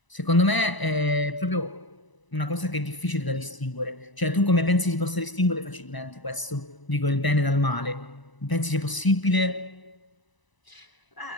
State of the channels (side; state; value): right; late; 1.0 ms